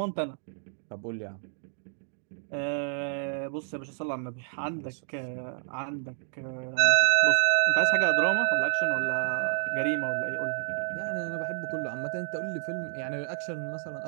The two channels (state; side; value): silent; left; digital silence